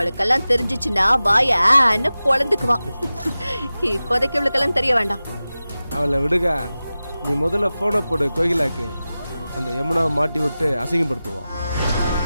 தெரிஞ்சிச்சுன்னா வாயான்னு பொழந்துக்குவான். இப்போதைக்கு இவளுக்கெல்லாம் தெரிய வேண்டாம். அவளை விடுங்க. நீ முதல்ல போனை போடு கோகிலாக்கு. அந்த யமுனாவை மாட்டி விட்டு அசிங்கப்படுத்துவோம்.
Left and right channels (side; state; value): both; inverted; correlation -0.96